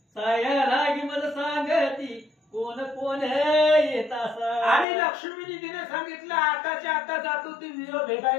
साया लागी मज सांगती कोण कोण येत असा. आणि लक्ष्मी निधीने सांगितलं आताच्या आता जातो ती वीर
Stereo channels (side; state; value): right; drops out; at 4.9 s